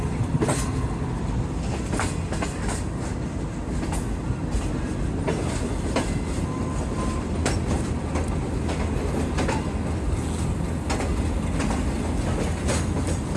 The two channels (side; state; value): both; identical; correlation 1.00